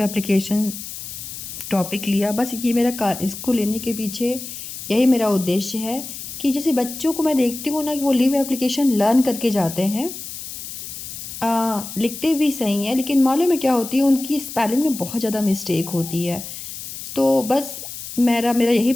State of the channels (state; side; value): noise; left; hiss, 10 dB below the sound